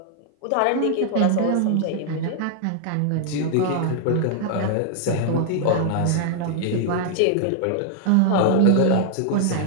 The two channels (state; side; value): different; both; correlation 0.00